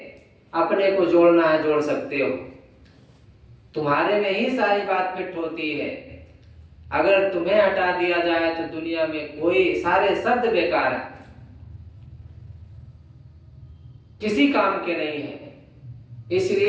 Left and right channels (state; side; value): identical; both; correlation 1.00